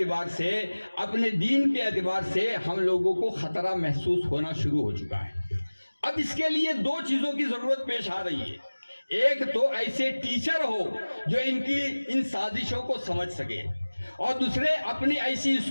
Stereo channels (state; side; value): inverted; both; correlation -1.00